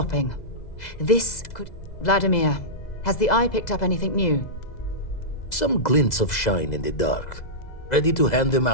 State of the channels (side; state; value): right; late; 2.0 ms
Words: This could... Vladimir, has the Eye picked up anything new? Some glints of shine in the dark. Ready to hand them